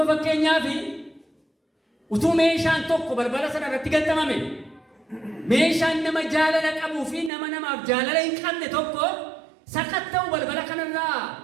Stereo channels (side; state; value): left; drops out; at 7.3 s